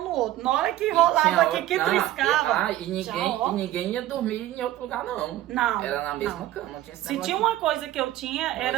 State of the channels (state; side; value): quieter; left; 14.6 dB